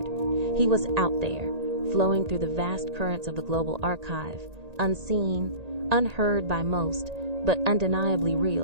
He was out there, flowing through the vast currents of the global archive, unseen, unheard by most, but undeniably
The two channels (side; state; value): left; late; 1.8 ms